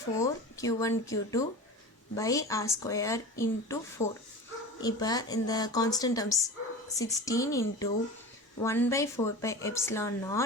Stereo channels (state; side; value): normal; both; correlation 0.32